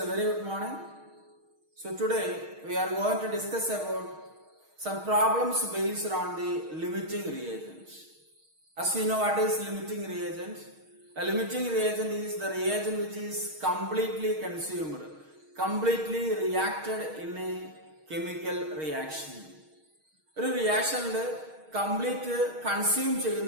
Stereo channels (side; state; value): left; late; 6.4 ms